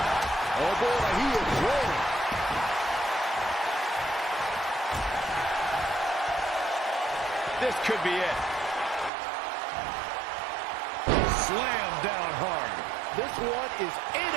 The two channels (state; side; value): drops out; left; at 9.1 s